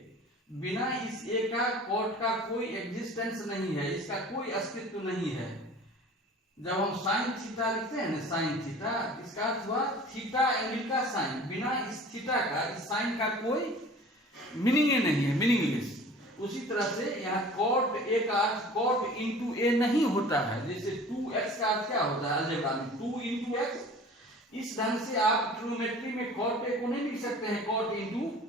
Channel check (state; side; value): normal; both; correlation 0.44